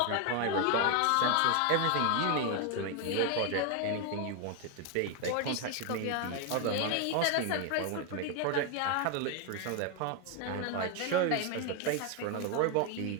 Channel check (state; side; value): different; both; correlation 0.01